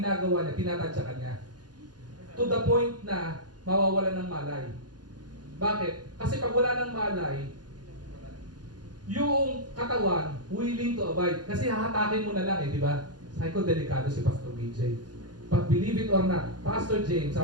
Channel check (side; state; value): left; late; 0.69 ms